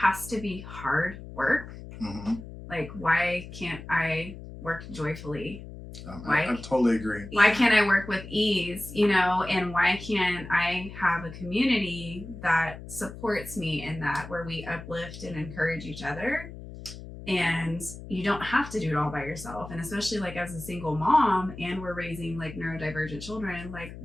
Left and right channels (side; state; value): left; noise; hum, 13 dB below the sound